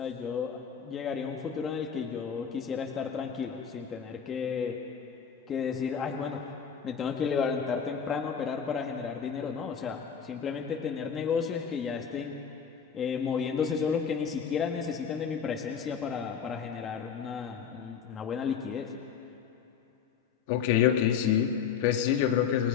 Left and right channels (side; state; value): right; quieter; 7.2 dB